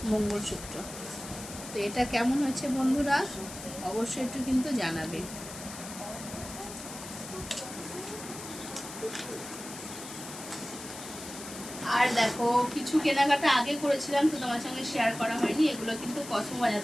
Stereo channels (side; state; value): left; noise; hiss, 12 dB below the sound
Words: মঙ্গলসূত্র। তো এটা কেমন হচ্ছে বন্ধুরা অবশ্যই একটু কিন্তু জানাবে। আর দেখো কিছু কেনাকাটা আগে করেছিলাম, তো তোমার সঙ্গে শেয়ার করা হয়নি। এগুলো কিন্তু কসমো বাজার